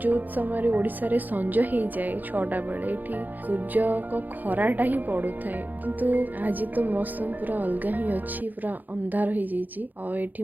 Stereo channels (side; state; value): left; late; 0.084 ms